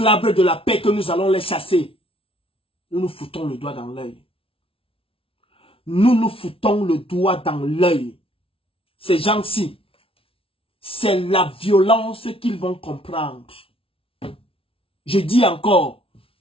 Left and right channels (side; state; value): right; late; 0.26 ms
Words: de la paix que nous allons les chasser, nous nous foutons le doigt dans l'œil. Nous nous foutons le doigt dans l'œil. Ces gens-ci, c'est la violence qu'ils vont comprendre. Je dis encore,